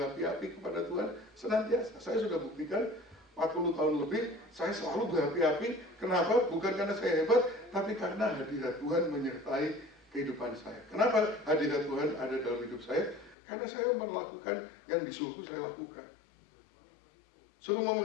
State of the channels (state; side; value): drops out; right; at 13.4 s